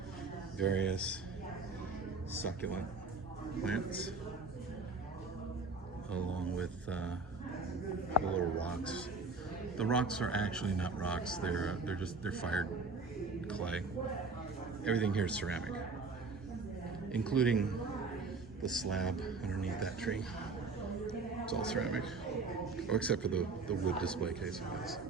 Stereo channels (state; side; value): quieter; left; 3.9 dB